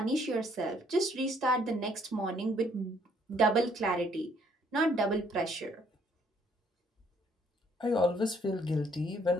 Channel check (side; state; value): both; normal; correlation 0.65